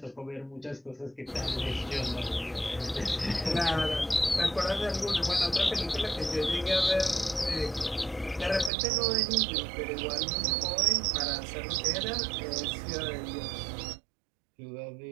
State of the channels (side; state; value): left; drops out; at 8.7 s